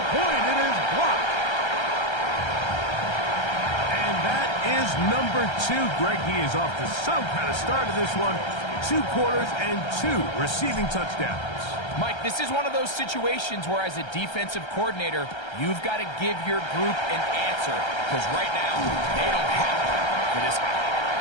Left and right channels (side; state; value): right; late; 1.3 ms